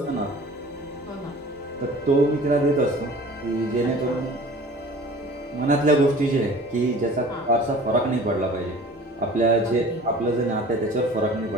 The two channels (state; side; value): normal; both; correlation 0.44